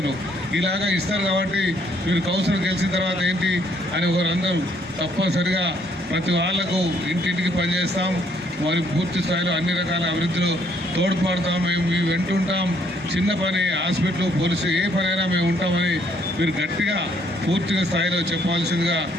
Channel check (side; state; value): both; normal; correlation 0.67